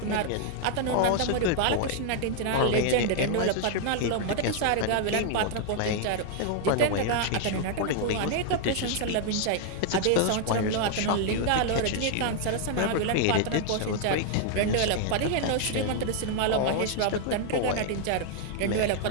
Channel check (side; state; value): both; different; correlation 0.00